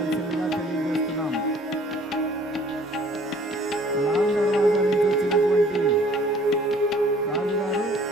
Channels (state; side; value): normal; both; correlation 0.55